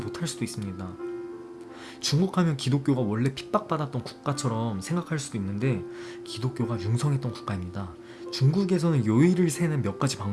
수도 있습니다. 중국 하면 기독교가 원래 핍박받았던 국가처럼 생각할 수도 있는데 기독교가 융성했던 국가입니다. 중국에서는 요일을 세는 몇 가지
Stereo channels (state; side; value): identical; both; correlation 1.00